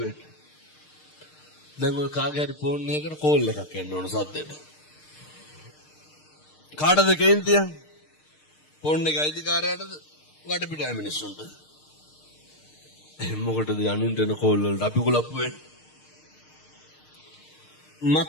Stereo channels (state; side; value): late; right; 6.6 ms